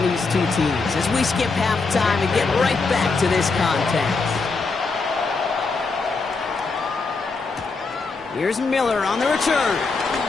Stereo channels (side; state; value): right; quieter; 4.2 dB